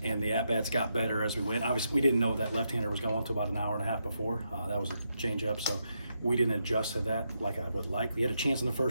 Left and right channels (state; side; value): inverted; both; correlation -0.82